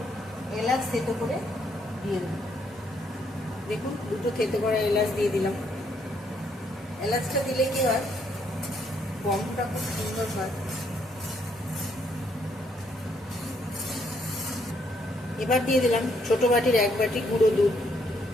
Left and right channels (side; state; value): both; normal; correlation 0.72